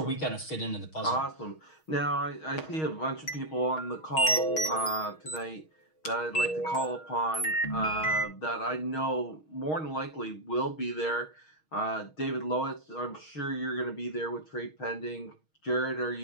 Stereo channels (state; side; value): late; right; 6.4 ms